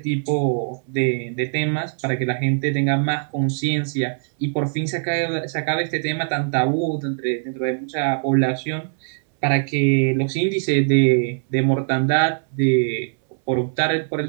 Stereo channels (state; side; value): silent; left; 65 dB below the other